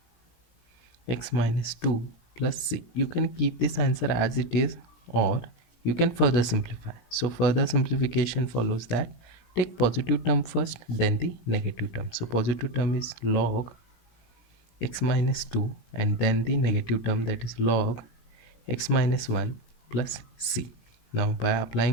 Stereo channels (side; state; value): right; late; 17 ms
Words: x minus 2 plus c. You can keep this answer as it is, or you can further simplify. So further simplification follows that take positive term first, then the negative term. So positive term is log x minus 2 and then the negative term, that is log x minus 1 plus c. Now by